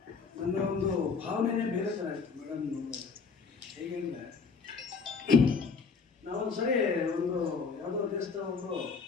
ನನ್ನ ಒಂದು ಭಾವನೆಯೇ ಬೇರೆ ಥರ ಇತ್ತು ಮೇಡಮ್ ನೋಡಿದ್ರೆ. ಹೇಗೆ ಅಂದರೆ ನಾವೊಂದು ಸರಿ ಒಂದು ಯಾವುದೋ ದೇಶದ ಒಬ್ಬರು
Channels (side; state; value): right; quieter; 5.1 dB